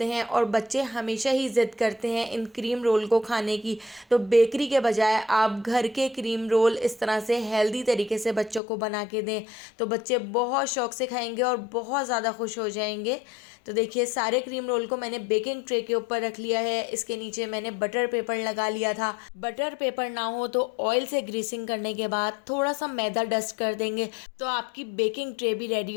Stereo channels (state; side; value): drops out; right; at 8.6 s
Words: हैं और बच्चे हमेशा ही ज़िद करते हैं इन क्रीम रोल को खाने की। तो बेकरी के बजाय आप घर के क्रीम रोल इस तरह से हेल्दी तरीके से बच्चों को बना के दें तो बच्चे बहुत शौक़ से खाएंगे और बहुत ज़्यादा खुश हो जाएंगे। तो देखिए सारे क्रीम रोल को मैंने बेकिंग ट्रे के ऊपर रख लिया है। इसके नीचे मैंने बटर पेपर लगा लिया था। बटर पेपर ना हो तो ऑयल से ग्रीसिंग करने के बाद थोड़ा सा मैदा डस्ट कर देंगे तो आपकी बेकिंग ट्रे भी रेडी